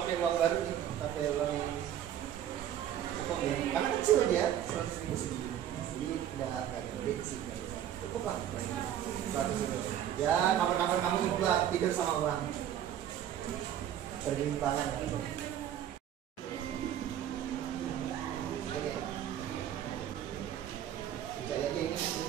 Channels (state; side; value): quieter; left; 10.7 dB